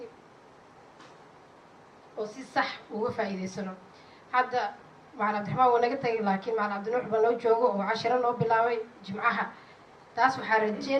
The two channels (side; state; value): both; identical; correlation 1.00